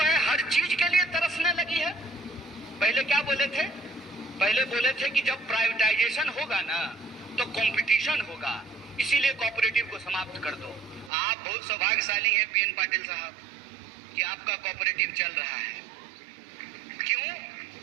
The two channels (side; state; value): left; drops out; at 11.1 s